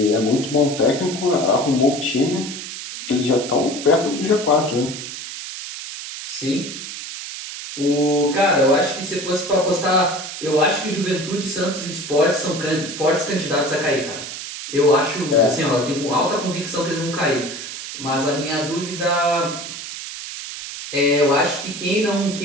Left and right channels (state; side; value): noise; right; hiss, 9 dB below the sound